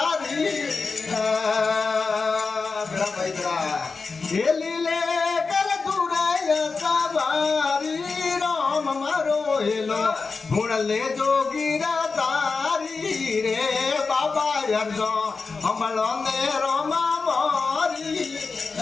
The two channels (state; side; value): quieter; right; 4.4 dB